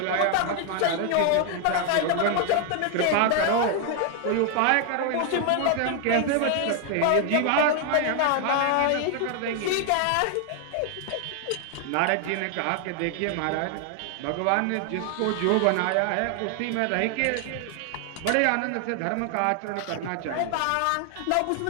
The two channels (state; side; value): different; both; correlation 0.00